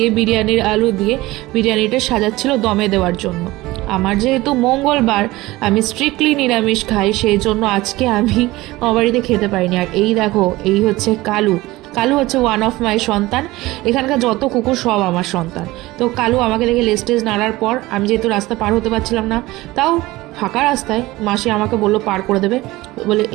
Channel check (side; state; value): left; quieter; 19.2 dB